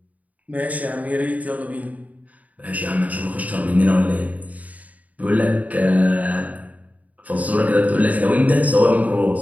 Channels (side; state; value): left; late; 0.073 ms